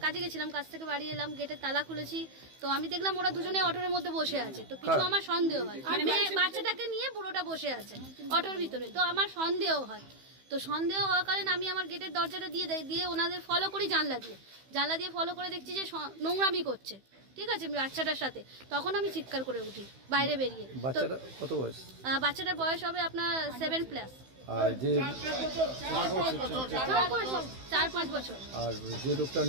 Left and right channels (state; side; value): late; left; 15 ms